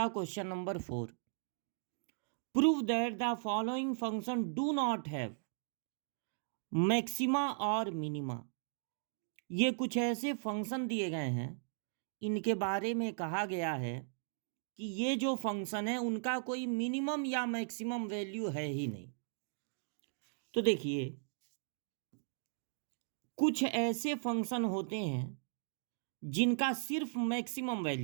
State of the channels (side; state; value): left; silent; digital silence